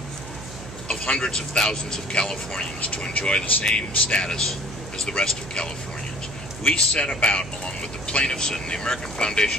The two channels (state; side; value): noise; right; hum, 13 dB below the sound